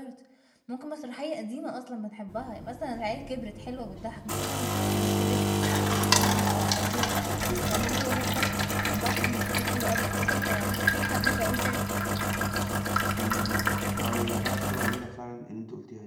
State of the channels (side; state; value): both; identical; correlation 1.00